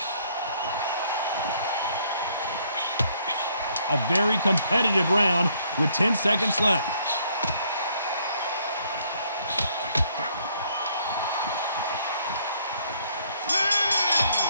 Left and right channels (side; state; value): both; inverted; correlation -0.66